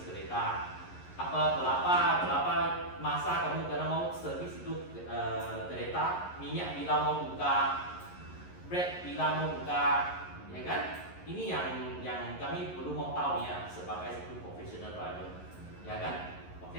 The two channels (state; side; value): late; right; 11 ms